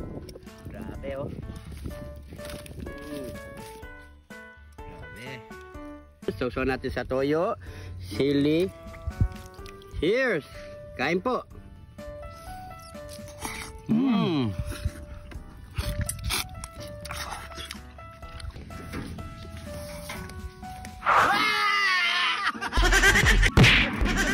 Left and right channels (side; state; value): both; identical; correlation 1.00